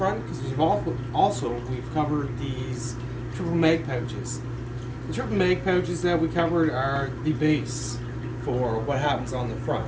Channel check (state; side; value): identical; both; correlation 1.00